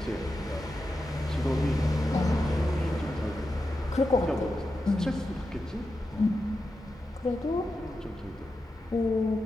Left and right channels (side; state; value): both; normal; correlation 0.89